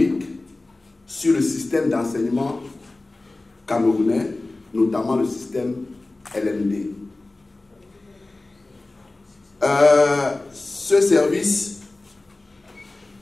sur le système d'enseignement camerounais, notamment le système LMD. Ce service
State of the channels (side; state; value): right; quieter; 3.0 dB